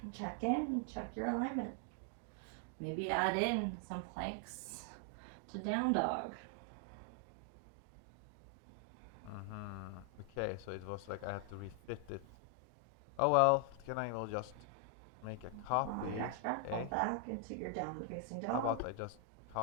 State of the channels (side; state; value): both; different; correlation 0.00